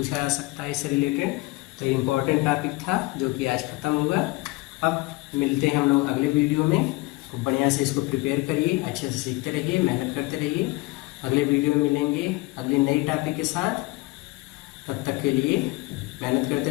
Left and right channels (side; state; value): right; quieter; 22.3 dB